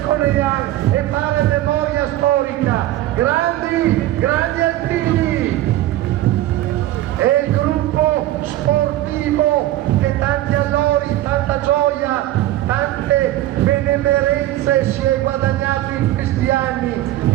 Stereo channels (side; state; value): left; quieter; 14.8 dB